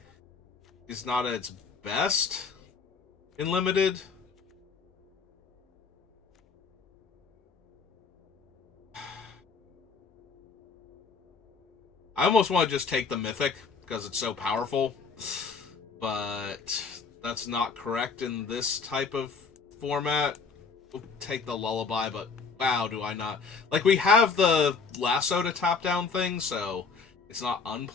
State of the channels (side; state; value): right; quieter; 5.0 dB